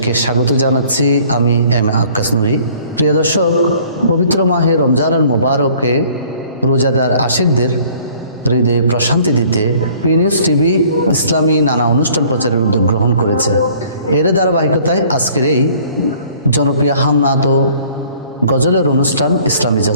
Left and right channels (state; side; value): inverted; both; correlation -0.55